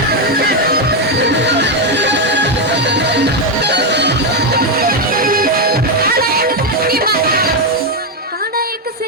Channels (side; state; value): both; normal; correlation 0.05